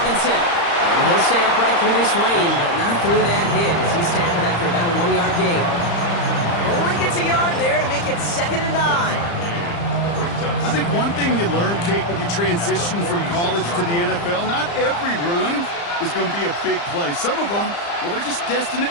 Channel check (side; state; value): right; late; 35 ms